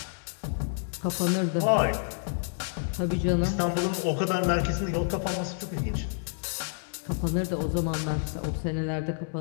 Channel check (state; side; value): silent; right; 59 dB below the other